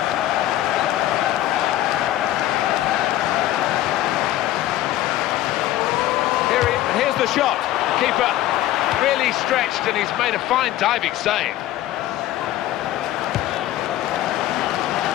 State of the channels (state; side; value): quieter; right; 14.2 dB